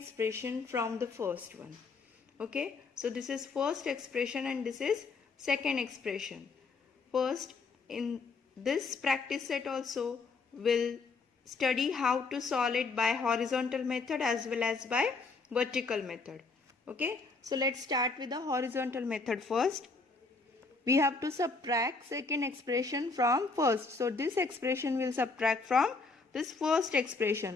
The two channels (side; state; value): right; quieter; 4.1 dB